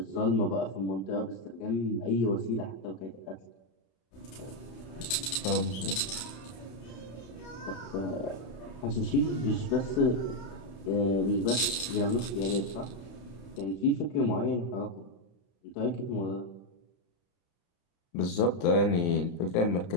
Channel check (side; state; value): right; late; 31 ms